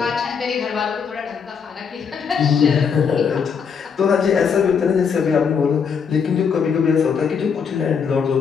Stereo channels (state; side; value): quieter; right; 6.4 dB